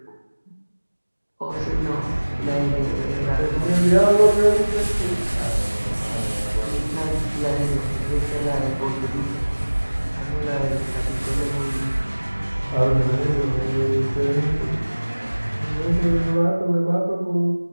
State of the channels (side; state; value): both; inverted; correlation -1.00